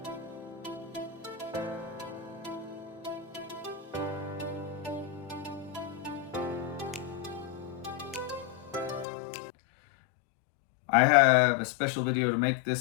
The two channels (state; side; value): drops out; right; at 9.1 s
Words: I have a special video to make